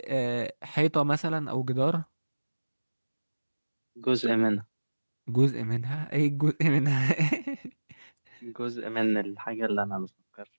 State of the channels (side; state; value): both; inverted; correlation -1.00